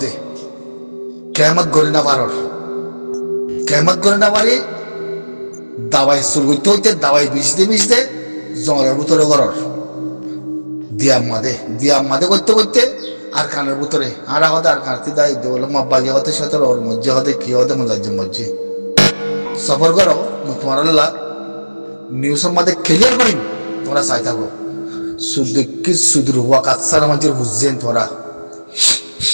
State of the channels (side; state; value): both; inverted; correlation -1.00